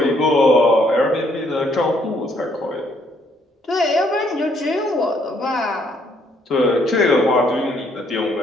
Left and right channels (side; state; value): both; normal; correlation 0.68